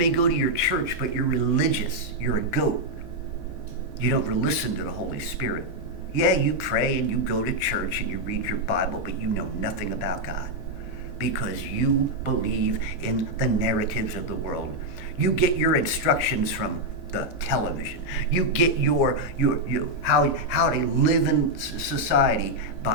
your church, but you're religious. You're a goat. You don't listen to the Holy Spirit. Yeah, you pray and you go to church and you read your Bible, but you know nothing about God because you believe in the narratives of the world. You get your instructions from the television. You get your how to live in society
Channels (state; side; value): normal; both; correlation -0.01